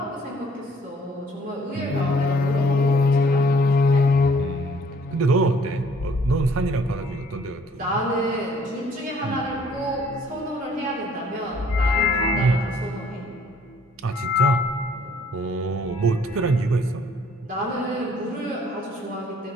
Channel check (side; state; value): both; normal; correlation 0.59